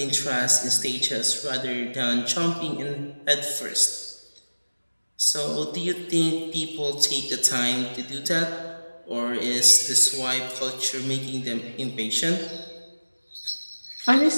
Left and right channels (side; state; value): both; inverted; correlation -1.00